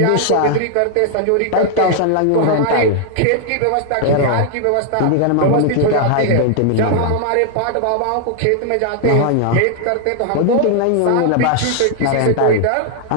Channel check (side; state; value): both; different; correlation 0.00